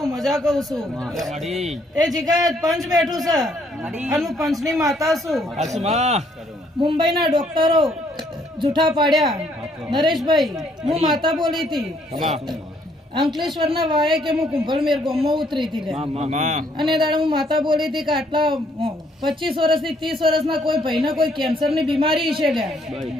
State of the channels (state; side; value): normal; both; correlation 0.67